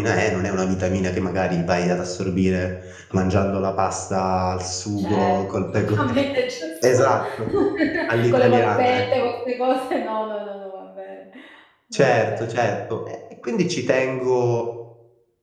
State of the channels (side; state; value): both; identical; correlation 1.00